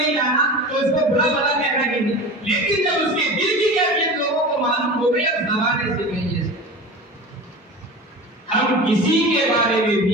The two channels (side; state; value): both; normal; correlation 0.32